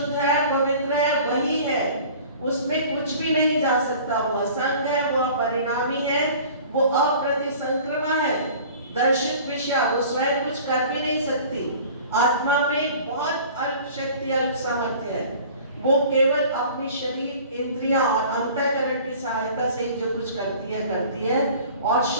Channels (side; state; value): both; inverted; correlation -0.45